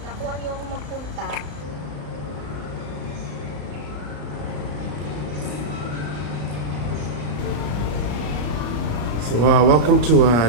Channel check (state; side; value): late; left; 34 ms